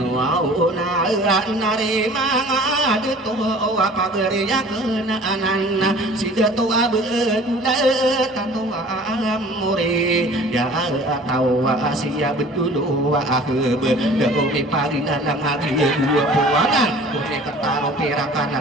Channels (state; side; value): normal; both; correlation 0.47